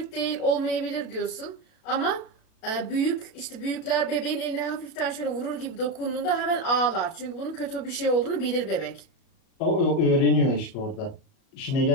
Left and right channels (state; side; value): late; right; 37 ms